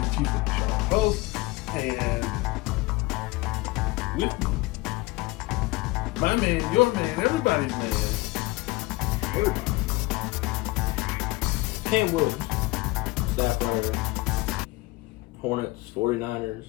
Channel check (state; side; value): quieter; right; 21.5 dB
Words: of the Charlotte Post. And with me, my man, your man, everybody's man, everybody. Cam Williams, staff writer, Hornets, 49ers,